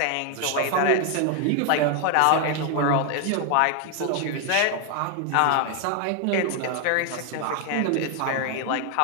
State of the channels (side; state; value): both; different; correlation 0.01